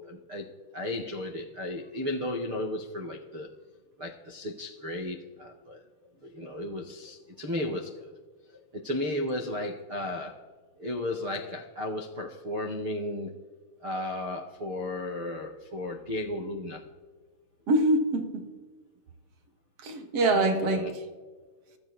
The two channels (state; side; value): late; left; 7.6 ms